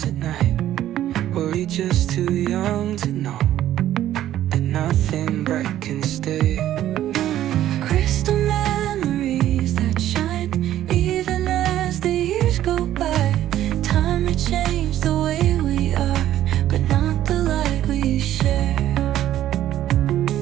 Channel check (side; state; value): left; quieter; 12.5 dB